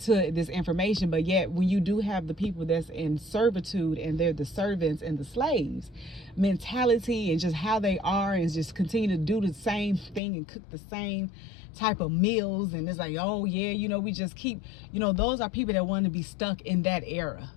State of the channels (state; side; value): drops out; right; at 10.2 s